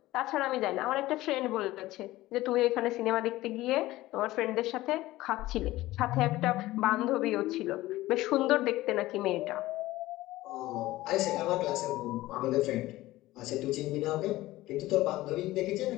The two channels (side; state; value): right; quieter; 17.2 dB